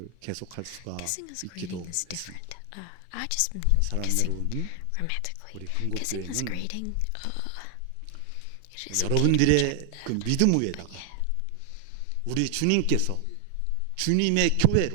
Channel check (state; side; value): different; both; correlation 0.00